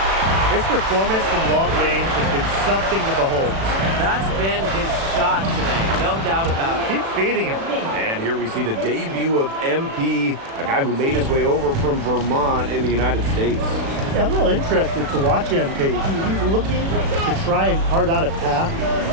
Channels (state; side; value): late; left; 36 ms